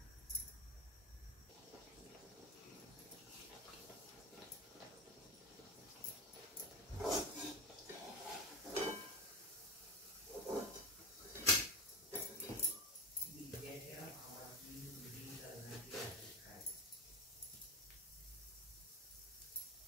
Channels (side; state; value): both; normal; correlation 0.21